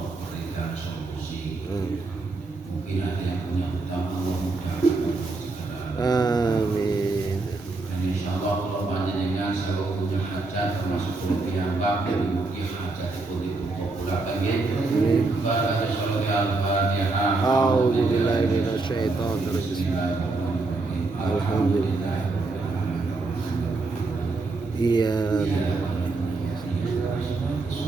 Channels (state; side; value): quieter; left; 3.5 dB